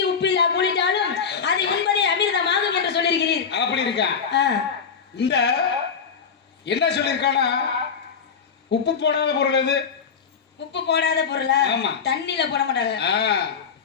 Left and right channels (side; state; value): right; quieter; 6.3 dB